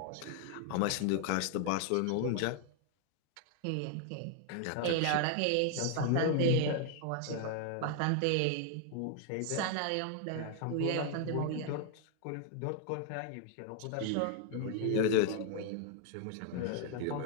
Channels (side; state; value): both; different; correlation 0.00